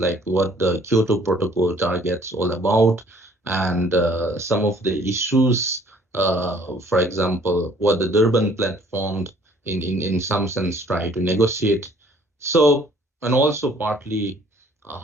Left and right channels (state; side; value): normal; both; correlation 0.58